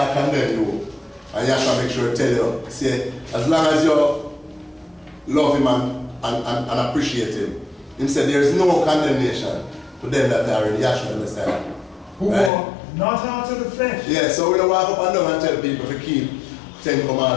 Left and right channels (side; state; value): right; drops out; at 12.5 s